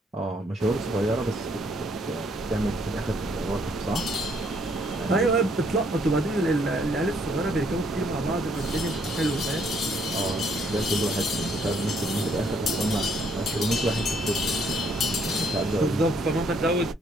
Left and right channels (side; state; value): both; normal; correlation 0.68